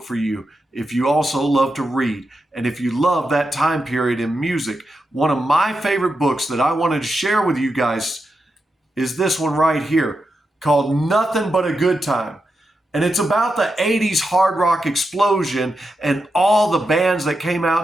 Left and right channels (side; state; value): both; normal; correlation 0.87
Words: for you if you also love to read and if you love that time period in music? One of my favorite books that I wanted to share with you guys is this one right here called Nothing But a Good Time. And it's about the 80s hard rock explosion and all the bands that came